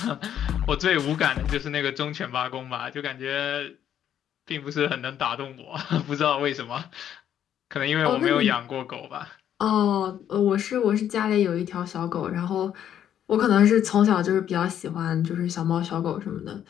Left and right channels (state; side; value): quieter; right; 10.0 dB